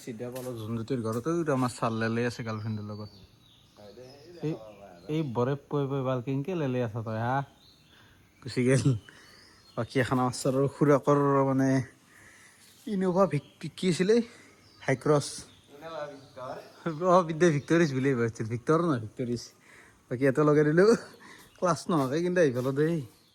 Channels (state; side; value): identical; both; correlation 1.00